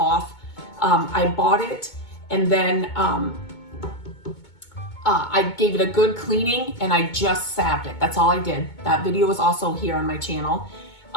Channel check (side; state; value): right; late; 2.2 ms